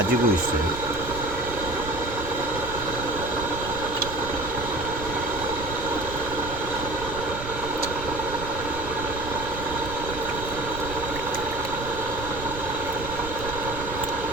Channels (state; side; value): noise; right; rumble, 9 dB below the sound